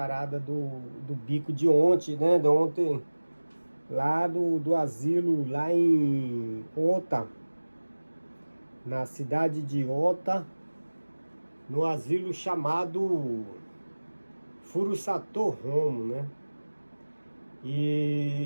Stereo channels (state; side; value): inverted; both; correlation -1.00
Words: do bico de ontem, né? De ontem, lá do asilo, lá em Ota, na cidade de Ota, no asilo chamado Furusato Homo, né?